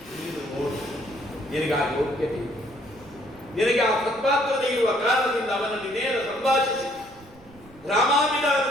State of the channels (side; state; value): right; noise; rumble, 24 dB below the sound